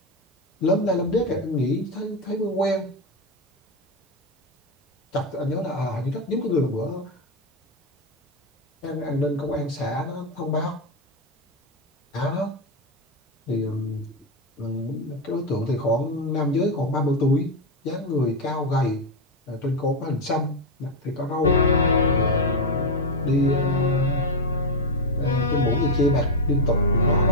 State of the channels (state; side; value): normal; both; correlation 0.07